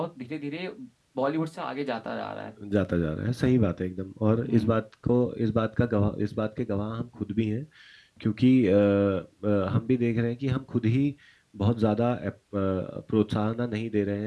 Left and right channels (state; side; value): identical; both; correlation 1.00